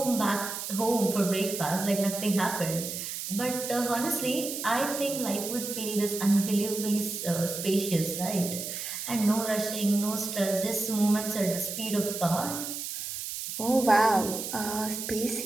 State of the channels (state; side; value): noise; right; hiss, 6 dB below the sound